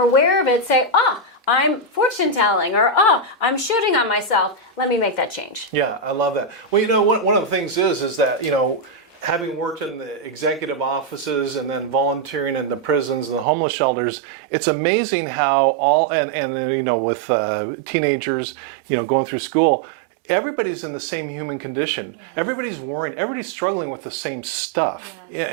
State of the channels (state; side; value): drops out; left; at 13.5 s